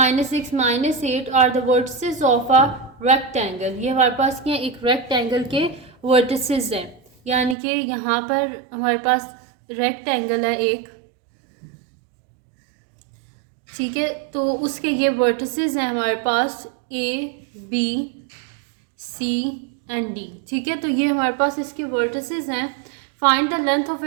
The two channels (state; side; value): drops out; left; at 7.6 s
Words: -8 are the vertices of a rectangle. ये हमारे पास क्या है, एक रेक्टेंगल के वर्टिसेस हैं, यानी कि यहाँ पर हमारे पास रेक्टेंगल है एक, ठीक है। तो उसके ये वर्टिसेस हैं हमारे पास A B C and D, ठीक है। तो ये हमारे पास इसके वर्टिसेस हैं। Find the length of